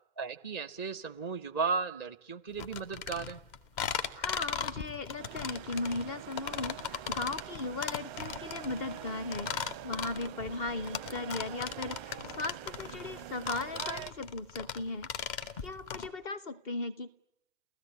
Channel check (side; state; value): right; late; 2.1 ms